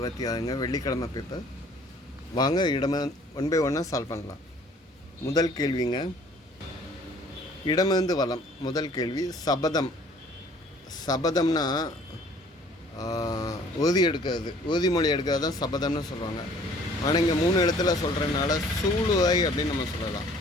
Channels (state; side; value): normal; both; correlation 0.55